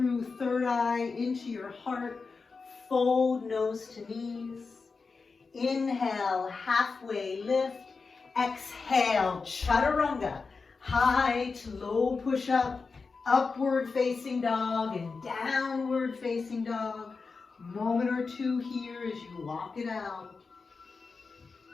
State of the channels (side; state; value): right; quieter; 4.5 dB